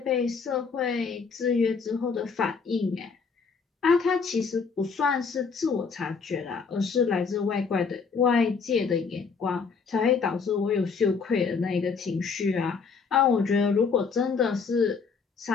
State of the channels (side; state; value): right; quieter; 5.3 dB